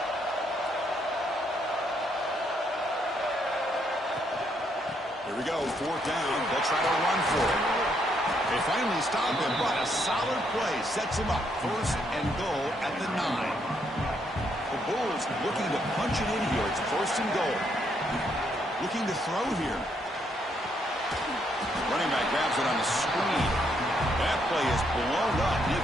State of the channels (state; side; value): normal; both; correlation 0.74